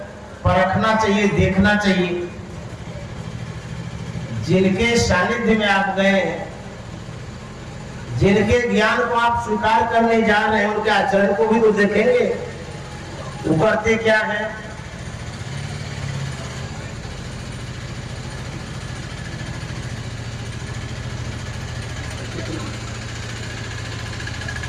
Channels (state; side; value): identical; both; correlation 1.00